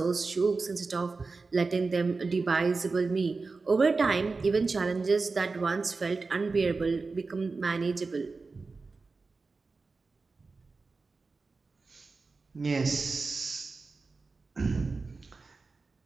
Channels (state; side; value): quieter; left; 4.1 dB